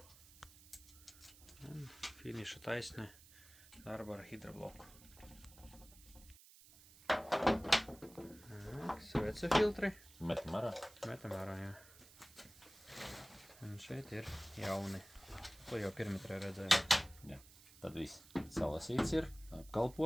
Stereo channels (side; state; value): right; noise; hiss, 21 dB below the sound